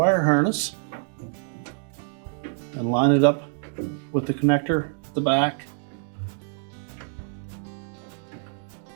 harness and line it up with the connector at the back.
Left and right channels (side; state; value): left; silent; digital silence